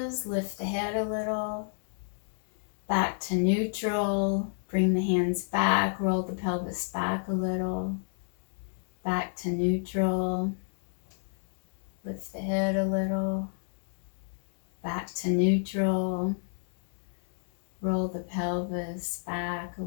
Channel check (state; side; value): silent; right; digital silence